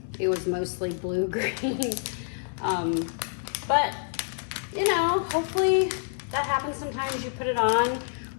it was mostly blue-green. But hopefully that happens sometimes. You put it on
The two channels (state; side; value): silent; right; 60 dB below the other